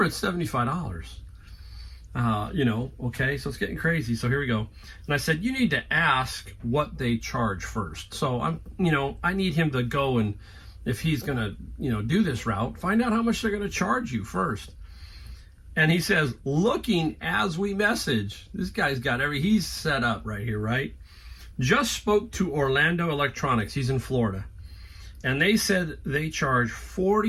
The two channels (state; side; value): identical; both; correlation 1.00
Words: it's $75. Okay, so it's getting crazy. So here we go. And I said, you need to ask what they charge first. So I need him to go, and if he's going to, do this route, find out how much they're going to charge you first. And he says, looking as we message, this guy's got he's set up right here, right? Just spoke to Orlando Electronics. He's in Florida. And they said they charge